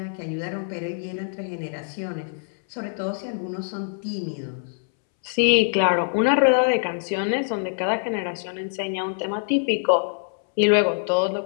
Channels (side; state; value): right; silent; 62 dB below the other